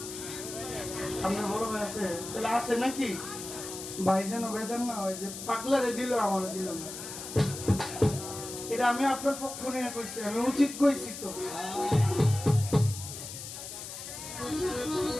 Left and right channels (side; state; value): left; noise; hiss, 9 dB below the sound